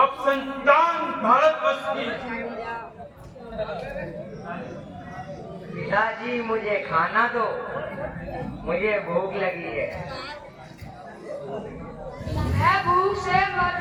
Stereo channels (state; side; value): identical; both; correlation 1.00